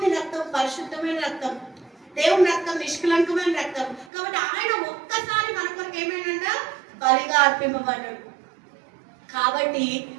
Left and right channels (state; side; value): drops out; left; at 4.1 s